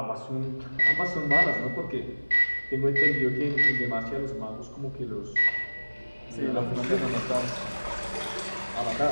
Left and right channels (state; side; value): inverted; both; correlation -1.00